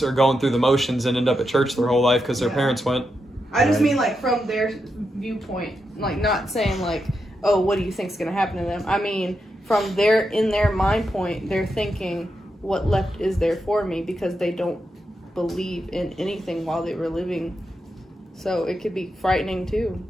are going through the motions and end up at church their whole life because their parents went. I just mean like from their viewpoint, like not saying like, oh, what do you think's gonna happen to them? I mean, from in their mind point, they're thinking, what left is there for me, because they don't believe in anything while they were living. So it could be frightening too.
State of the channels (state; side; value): normal; both; correlation 0.86